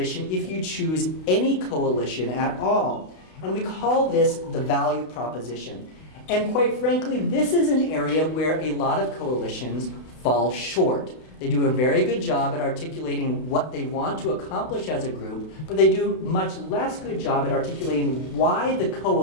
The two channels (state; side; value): late; right; 32 ms